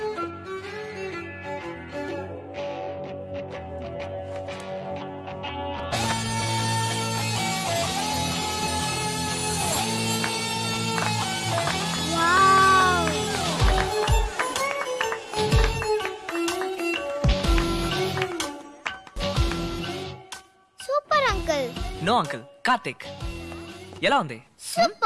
Super uncle. No uncle, Karthik. ఎలా ఉంది?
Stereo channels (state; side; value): identical; both; correlation 1.00